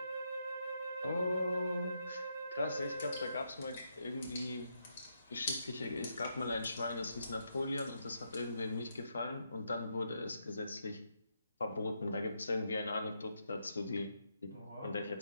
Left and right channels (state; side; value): inverted; both; correlation -0.80